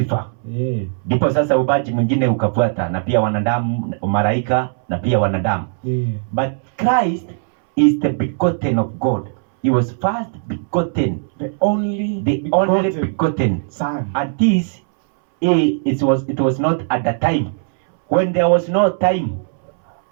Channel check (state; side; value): silent; left; 67 dB below the other